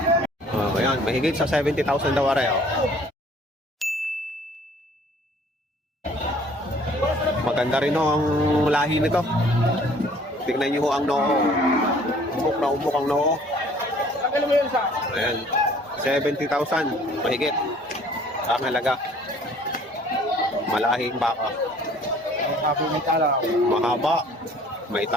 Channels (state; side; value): normal; both; correlation 0.55